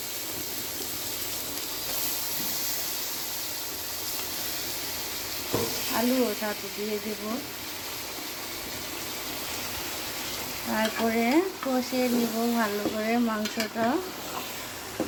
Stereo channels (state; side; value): identical; both; correlation 1.00